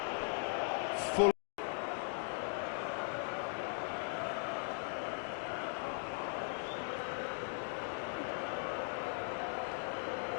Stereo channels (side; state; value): right; silent; 51 dB below the other